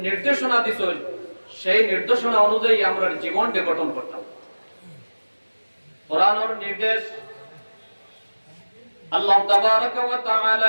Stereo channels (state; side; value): inverted; both; correlation -1.00